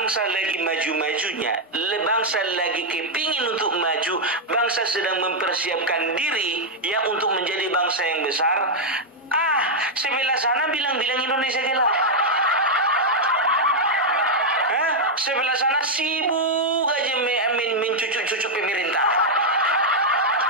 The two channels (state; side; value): normal; both; correlation -0.02